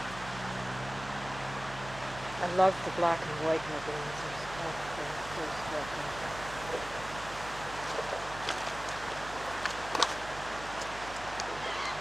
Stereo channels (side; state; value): right; noise; hum, 14 dB below the sound